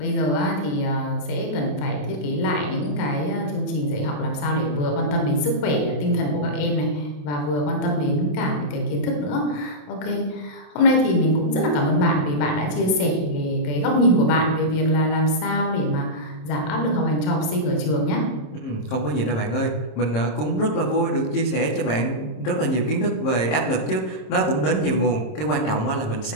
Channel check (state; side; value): late; right; 27 ms